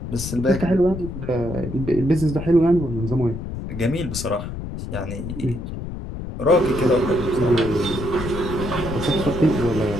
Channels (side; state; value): left; noise; rumble, 7 dB below the sound